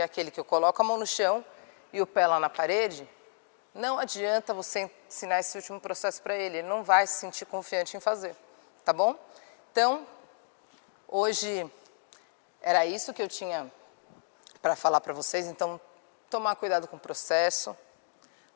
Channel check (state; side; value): silent; right; digital silence